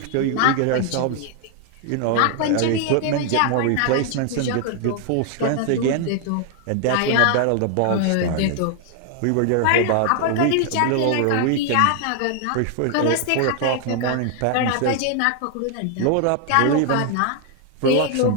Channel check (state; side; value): different; both; correlation 0.00